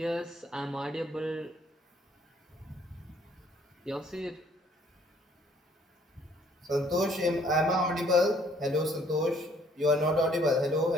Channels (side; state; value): both; normal; correlation 0.62